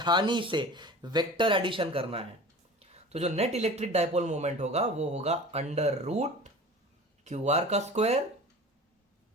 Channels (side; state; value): both; normal; correlation 0.39